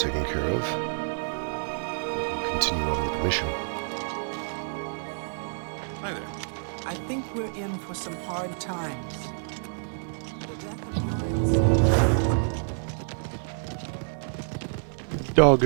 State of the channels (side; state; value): left; silent; digital silence